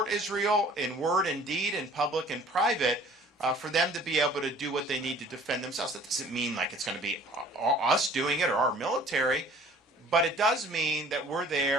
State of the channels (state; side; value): normal; both; correlation 0.51